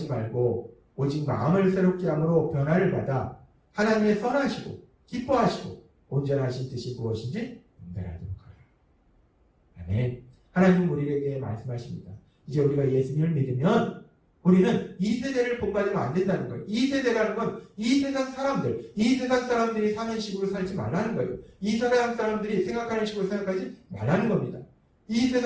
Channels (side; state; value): both; identical; correlation 1.00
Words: 말고 오직 마음을 새롭게 함으로 변화를 받아 하나님의 선하시고 기뻐하시고 온전하신 뜻이 무엇인지 분별하도록 하라. 아멘. 하나님 우리에게 말씀하십니다. 이제 우리가 예수님을 믿으면 우리는 이 세대를 본받으면 안 된다는 거예요. 이 세대라는 건 이 세상 사람들, 이 세상 사람들이 사는 식으로 살지 말라는 거예요. 이 세상 사람들이 생각하는 식으로 생각하지 말라는 겁니다. 이